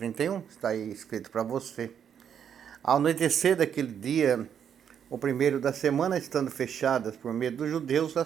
está aí escrito para você. Ao anoitecer daquele dia, o primeiro da semana, estando fechadas por medo dos judeus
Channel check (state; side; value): quieter; left; 8.4 dB